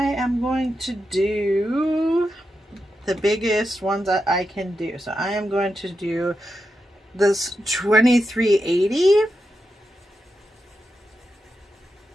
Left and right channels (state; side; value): normal; both; correlation 0.88